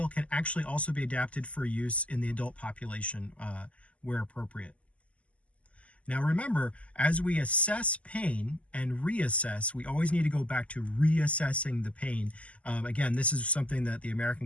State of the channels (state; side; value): late; right; 0.065 ms